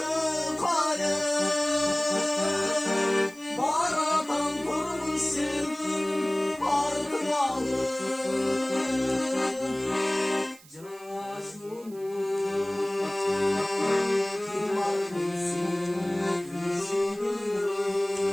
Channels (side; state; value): right; noise; hiss, 23 dB below the sound